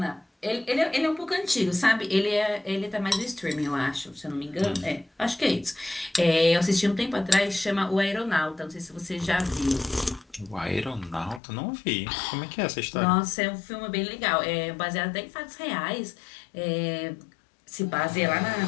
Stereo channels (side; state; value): right; drops out; at 11.4 s